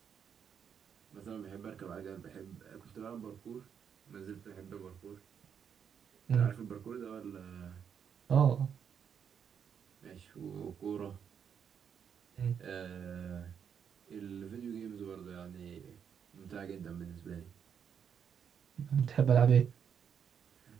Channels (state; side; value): quieter; left; 7.6 dB